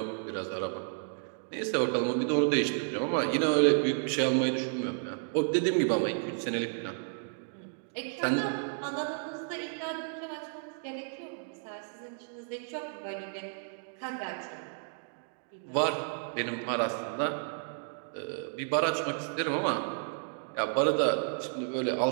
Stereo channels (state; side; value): silent; left; digital silence